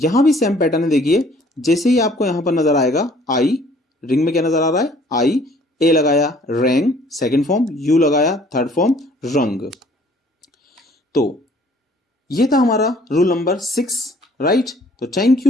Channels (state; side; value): normal; both; correlation 0.57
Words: भी सेम पैटर्न है। देखिए जैसे ही आपको यहां पर नजर आएगा आई, रिंग में क्या नजर आ रहा है, आई, ए लगाया रैंग सेकंड फॉर्म, यू लगाया थर्ड फॉर्म रंग। तो ये था हमारा रूल नंबर 6, राइट। तो thank